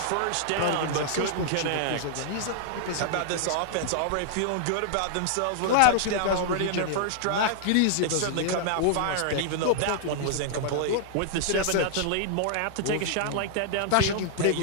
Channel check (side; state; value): both; different; correlation -0.01